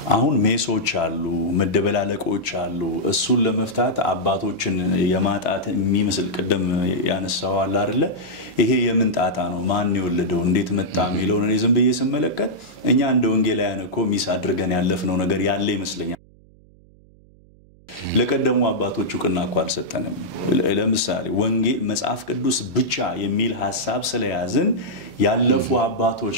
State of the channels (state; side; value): noise; right; hum, 27 dB below the sound